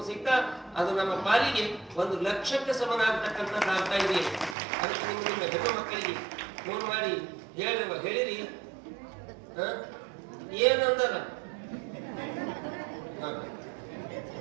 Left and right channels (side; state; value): left; drops out; at 4.5 s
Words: ಸಹಿತ ಅದು ನಮ್ಮ ಪಾಲಿಗೆ 1,00,000ಕ್ಕೆ ಸಮಾನ ಆಗ್ತಕ್ಕಂಥದ್ದು ಆಗ್ತಾ ಇದೆ. ಅದಕ್ಕೆ ನಿಮ್ಮ ಹೆಣ್ಣು ಮಕ್ಕಳಿಗೆ ಫೋನ್ ಮಾಡಿ ಹೇಳಿರಿ. ಏನಂದಾರ